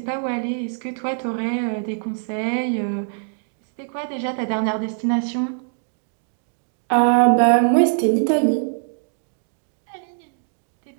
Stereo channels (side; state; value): left; silent; digital silence